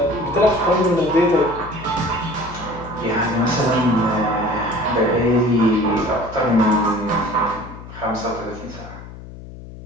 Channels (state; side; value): noise; left; hum, 15 dB below the sound